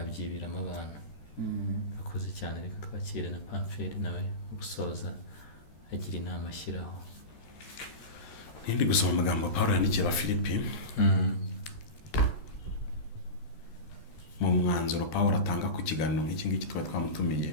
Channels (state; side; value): late; right; 13 ms